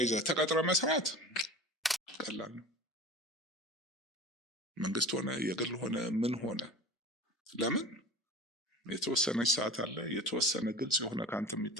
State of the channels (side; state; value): both; normal; correlation 0.37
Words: ተቀጥረ መስራት ቀላል ነው። መንግስት ሆነ የግል ሆነ ምን ሆነ ለምን የተወሰነች ሰዓት አለ፣ የተወሰነ ግልጽ የሆነ ካንተ